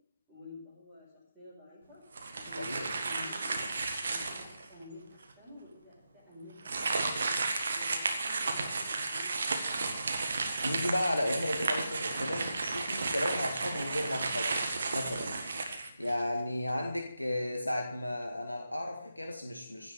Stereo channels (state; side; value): inverted; both; correlation -0.88